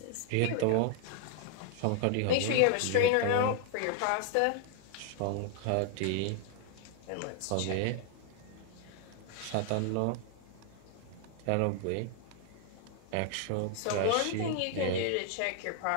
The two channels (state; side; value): different; both; correlation 0.00